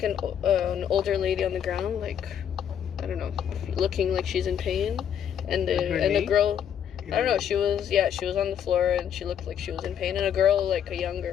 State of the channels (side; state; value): right; quieter; 9.0 dB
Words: an older lady on the ground, like, I don't know, looking like she's in pain, and a girl, I don't know, she was on the floor and she looked like she was in pain, and a girl, like a